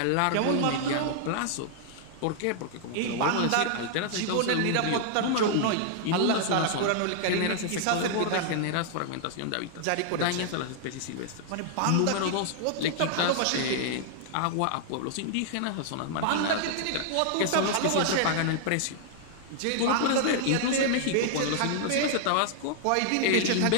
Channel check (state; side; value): different; both; correlation -0.01